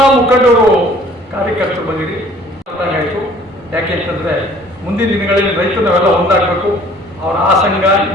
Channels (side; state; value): both; normal; correlation 0.54